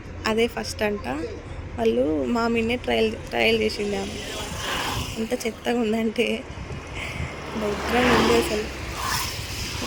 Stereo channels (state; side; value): identical; both; correlation 1.00